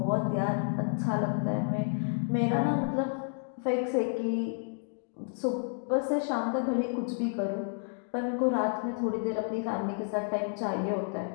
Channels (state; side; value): silent; right; 57 dB below the other